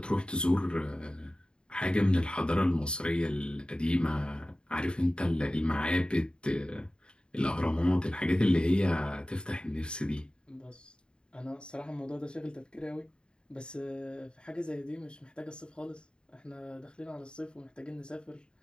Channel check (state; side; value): late; right; 0.051 ms